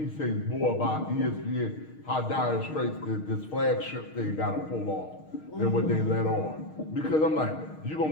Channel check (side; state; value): right; late; 6.4 ms